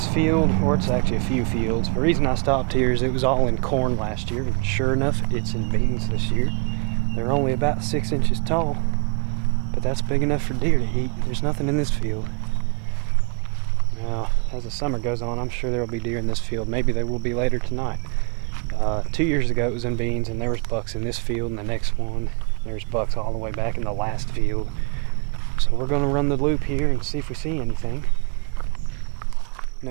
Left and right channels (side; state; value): left; quieter; 34.7 dB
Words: field, or it's actually a few fields, the reason I stopped here is it was all in corn last year, and sure enough, it's in beans this year. They're only about 6 inches tall, but that's big enough for deer to eat. There's nothing in this field. Now, as the summer goes on, I'm sure there will be deer in this field. Maybe they will be later tonight. 2 years ago it was in beans, and there was bucks in this field, and the next one, there's bucks all the way back in the last field. So we're going to run the loop here and see if we see anything.